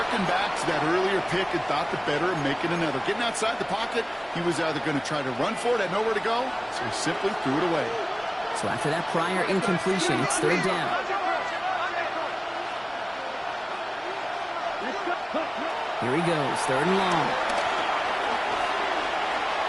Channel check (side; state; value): both; identical; correlation 1.00